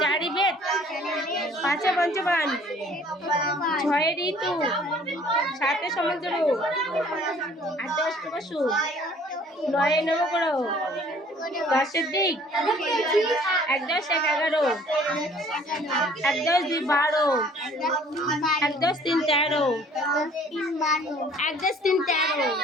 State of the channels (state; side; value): normal; both; correlation 0.55